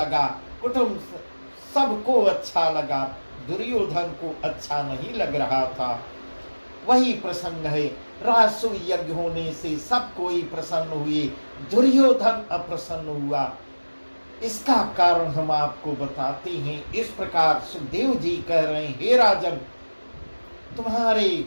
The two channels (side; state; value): both; inverted; correlation -1.00